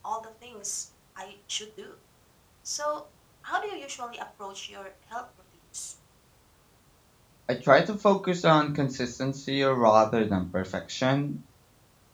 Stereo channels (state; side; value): identical; both; correlation 1.00